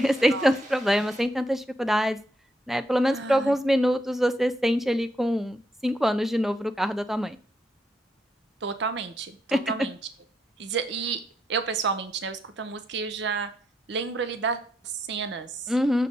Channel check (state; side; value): normal; both; correlation 0.78